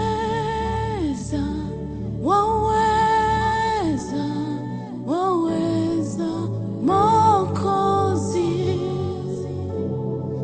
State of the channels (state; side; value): identical; both; correlation 1.00